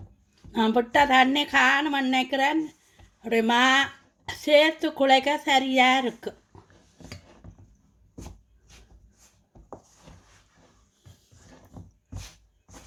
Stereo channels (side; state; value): both; identical; correlation 1.00